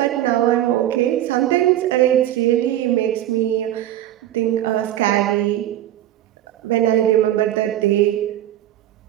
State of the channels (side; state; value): left; quieter; 12.9 dB